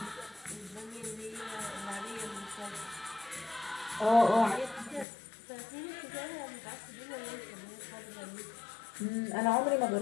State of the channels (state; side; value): drops out; right; at 5.1 s